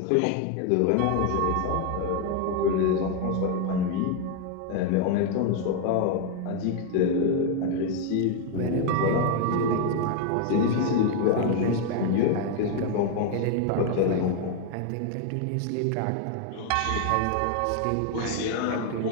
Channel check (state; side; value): different; both; correlation 0.01